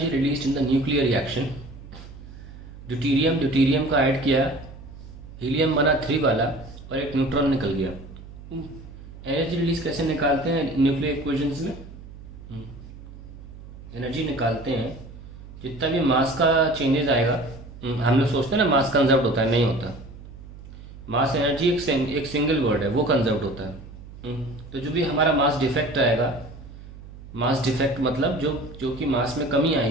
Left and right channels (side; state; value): right; noise; hum, 16 dB below the sound